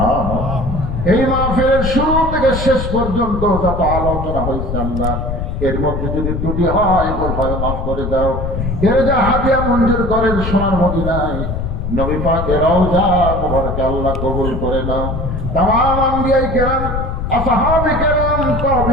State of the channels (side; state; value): left; noise; rumble, 3 dB below the sound